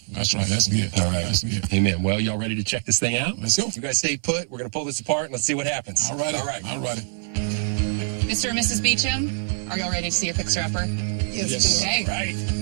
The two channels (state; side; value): silent; left; 62 dB below the other